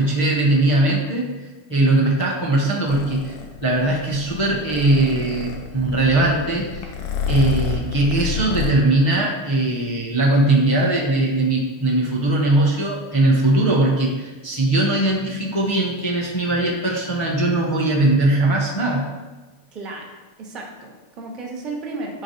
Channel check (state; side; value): late; right; 6.5 ms